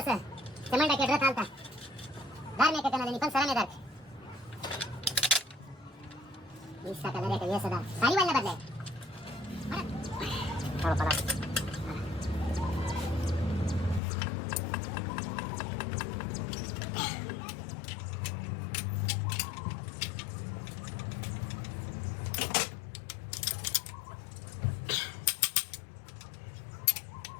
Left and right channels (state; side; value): drops out; right; at 14.0 s